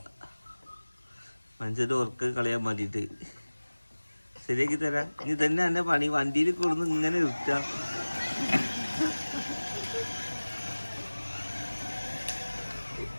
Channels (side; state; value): both; inverted; correlation -1.00